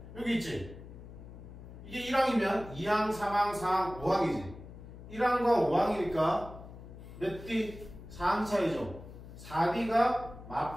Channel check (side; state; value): left; noise; hum, 15 dB below the sound